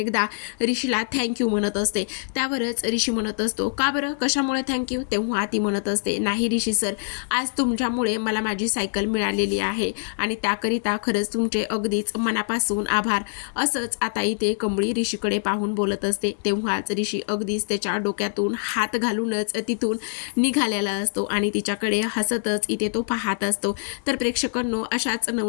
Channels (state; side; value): silent; right; 62 dB below the other